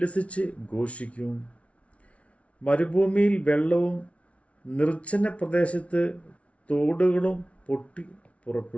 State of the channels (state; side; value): late; right; 0.063 ms